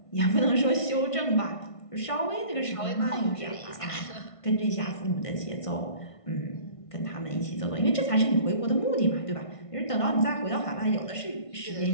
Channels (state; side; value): late; right; 1.5 ms